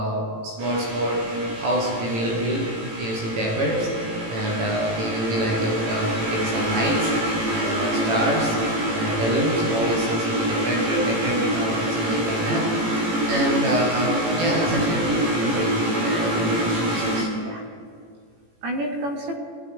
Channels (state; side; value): late; left; 18 ms